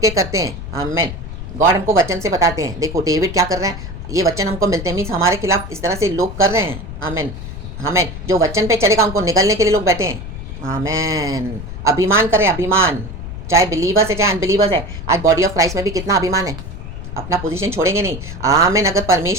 करते हैं, आमीन, गॉड हमको वचन से बताते हैं। देखो डेविड क्या कर रहे हैं, ये वचन हमको मिलते हैं, मीन्स हमारे खिलाफ इस तरह से लोग कर रहे हैं, आमीन, आमीन। जो वचन पे चलेगा उनको निगलने के लिए लोग बैठे हैं, आमीन। अभिमान करें, अभिमान, चाहे बिलीवर्स है चाहे अनबिलीवर्स है। आज बॉडी ऑफ क्राइस्ट में भी कितना अभिमान है, अपना पोजीशन छोड़ेंगे नहीं, आमीन। अगर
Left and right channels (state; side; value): noise; left; rumble, 9 dB below the sound